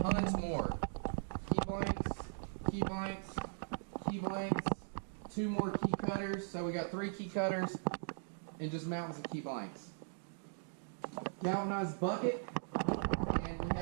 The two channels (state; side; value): silent; left; digital silence